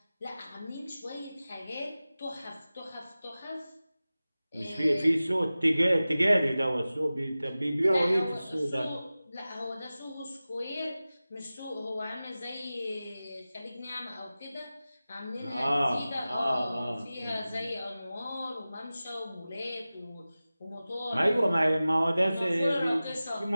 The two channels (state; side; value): inverted; both; correlation -0.96